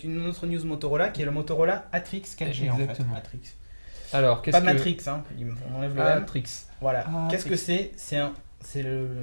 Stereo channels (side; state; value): both; inverted; correlation -1.00